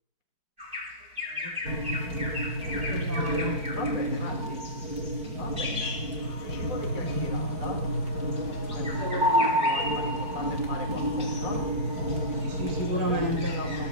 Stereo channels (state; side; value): late; left; 4.6 ms